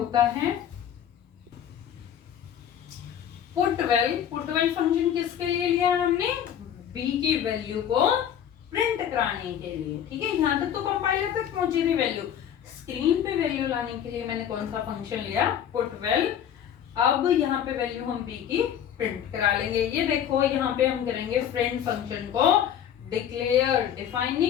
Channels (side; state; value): right; quieter; 9.5 dB